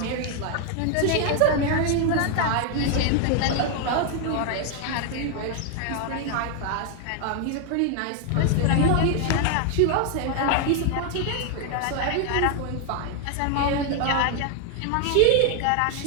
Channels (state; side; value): different; both; correlation 0.00